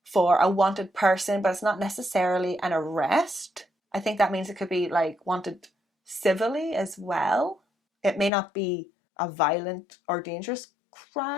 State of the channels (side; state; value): right; drops out; at 8.3 s